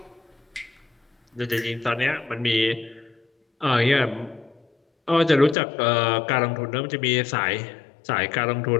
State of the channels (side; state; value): right; drops out; at 5.6 s